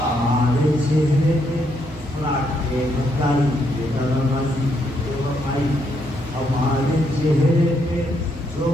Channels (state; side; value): normal; both; correlation 0.76